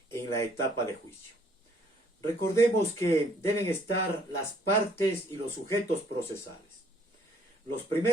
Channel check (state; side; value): normal; both; correlation 0.62